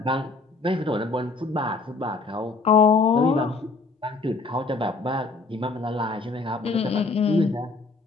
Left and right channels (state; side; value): quieter; right; 3.8 dB